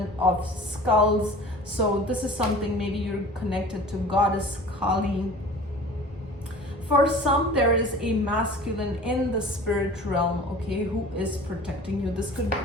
of skulls. So this is something, maybe you're connected to goddess Kali. For some, there is a masculine in the spirit realm, okay, who is protecting you. This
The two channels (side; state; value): both; normal; correlation 0.42